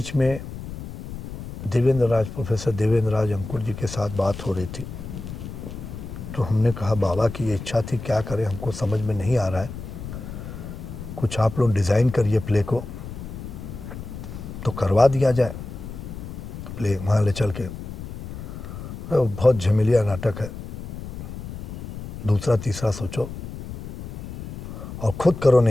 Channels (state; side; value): noise; left; rumble, 10 dB below the sound